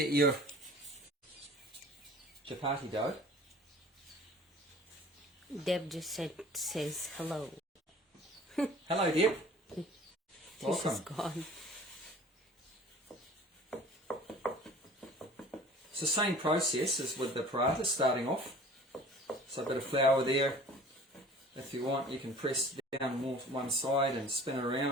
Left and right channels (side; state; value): both; normal; correlation 0.46